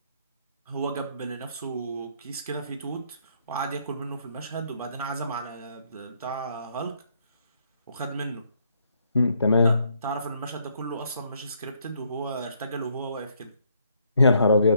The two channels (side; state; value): both; inverted; correlation -0.70